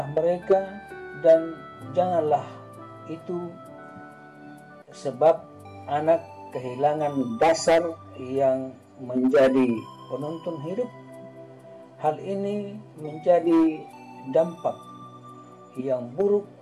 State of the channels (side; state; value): both; identical; correlation 1.00